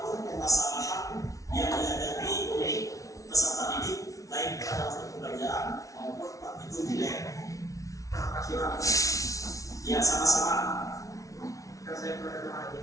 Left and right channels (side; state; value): right; late; 0.17 ms